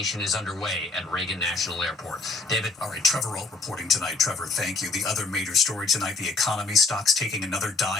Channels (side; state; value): right; quieter; 3.5 dB